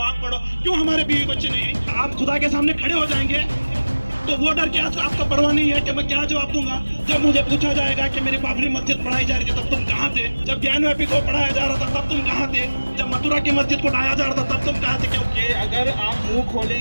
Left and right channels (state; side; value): inverted; both; correlation -1.00